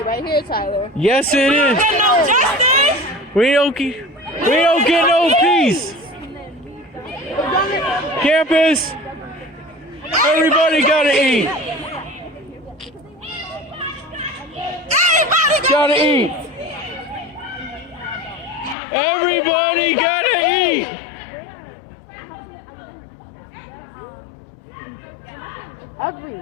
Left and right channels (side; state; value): right; drops out; at 18.8 s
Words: right here, Tyler. Yes, it is. We don't get no peace. Campus, everybody gotta eat. Gotta eat. Everybody gotta eat.